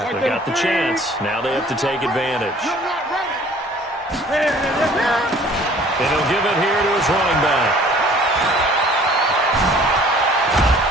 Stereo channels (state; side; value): normal; both; correlation 0.52